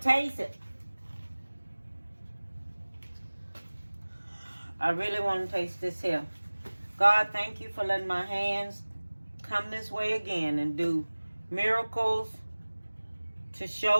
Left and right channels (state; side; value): inverted; both; correlation -1.00